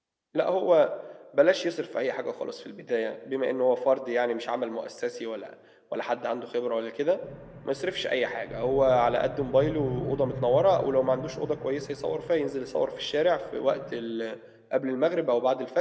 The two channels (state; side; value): identical; both; correlation 1.00